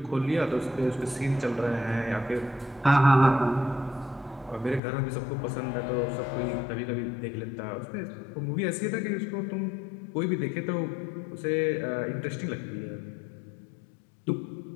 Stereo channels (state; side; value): drops out; right; at 4.8 s